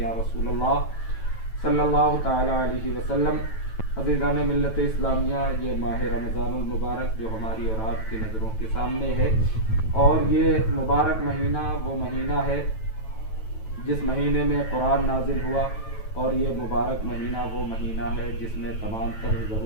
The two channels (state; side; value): late; right; 9.1 ms